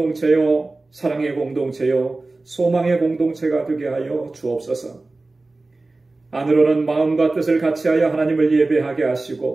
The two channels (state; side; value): quieter; left; 3.2 dB